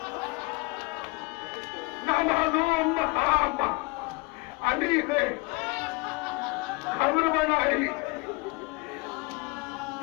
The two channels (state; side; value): quieter; right; 26.8 dB